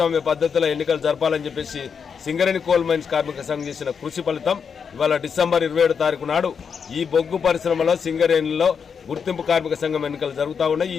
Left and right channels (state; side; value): quieter; right; 6.4 dB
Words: పద్ధతిలో ఎన్నికలు జరపాలని చెప్పేసి సింగరేణి కోల్ మైన్స్ కార్మిక సంఘం చేసిన కృషి ఫలితం ఇవాళ డిసెంబర్ 27వ తారీఖు నాడు ఈ బొగ్గు పరిశ్రమలో సింగరేణిలో గుర్తింపు కార్మిక సంఘం ఎన్నికలు జరుగుతూ ఉన్నాయి. ఈ